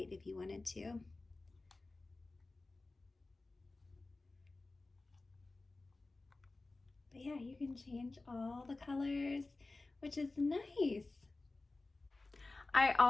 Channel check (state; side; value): quieter; right; 3.3 dB